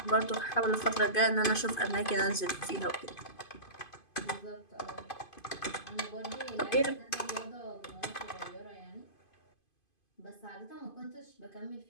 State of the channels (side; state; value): right; late; 2.5 ms